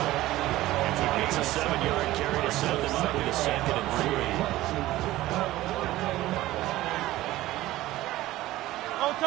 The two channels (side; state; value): left; quieter; 16.3 dB